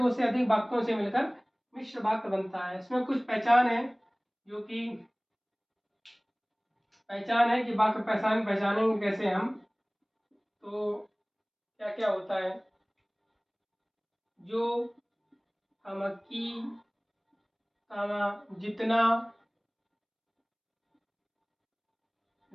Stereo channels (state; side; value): identical; both; correlation 1.00